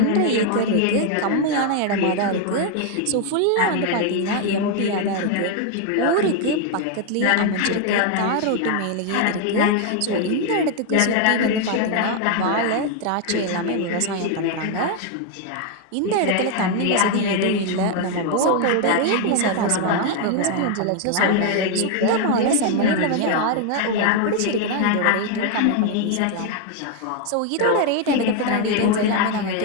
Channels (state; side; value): different; both; correlation 0.00